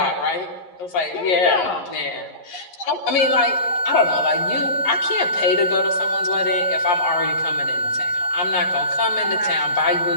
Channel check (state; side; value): late; right; 11 ms